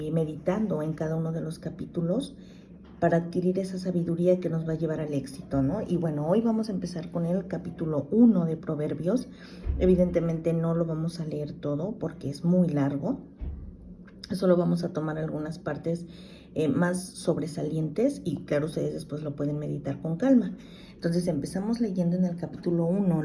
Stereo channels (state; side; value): identical; both; correlation 1.00